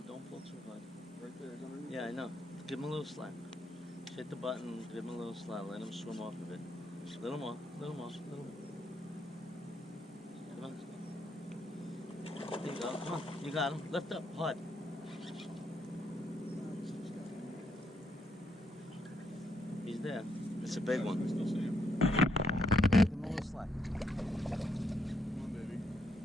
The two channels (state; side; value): normal; both; correlation 0.76